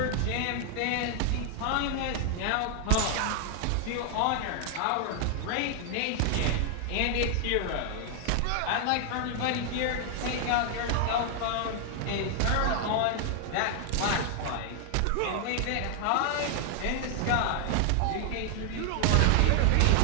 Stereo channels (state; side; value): different; both; correlation 0.00